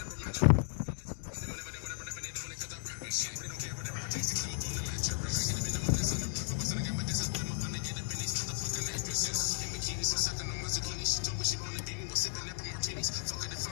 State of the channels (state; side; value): silent; right; 54 dB below the other